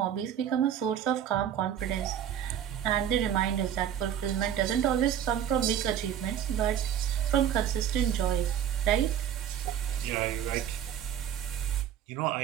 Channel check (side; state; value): left; quieter; 9.6 dB